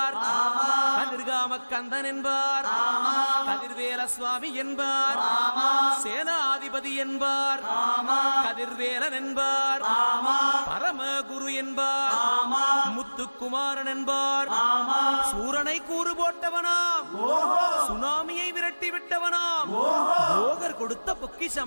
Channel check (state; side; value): inverted; both; correlation -1.00